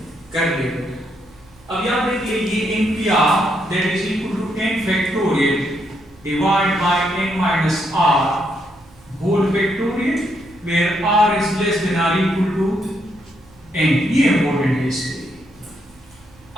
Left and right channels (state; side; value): normal; both; correlation 0.77